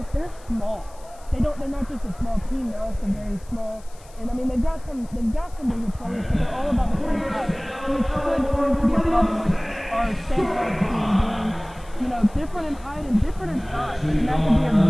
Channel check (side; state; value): left; noise; hiss, 25 dB below the sound